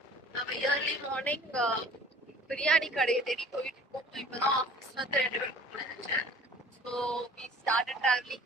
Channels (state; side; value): normal; both; correlation 0.49